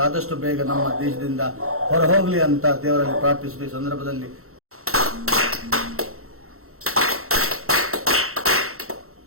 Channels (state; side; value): late; left; 0.63 ms